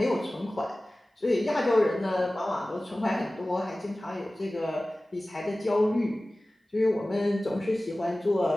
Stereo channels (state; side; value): normal; both; correlation 0.97